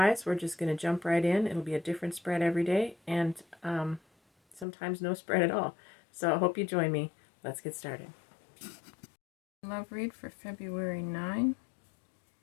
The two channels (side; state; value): right; drops out; at 4.7 s